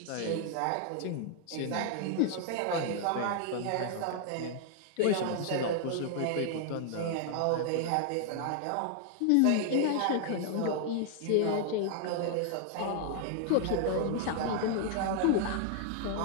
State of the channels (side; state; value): both; different; correlation 0.00